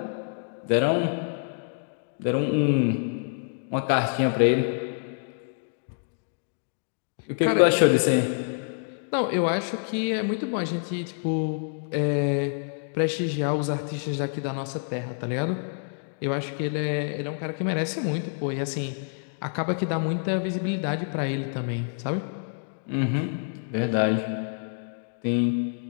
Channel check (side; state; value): right; silent; digital silence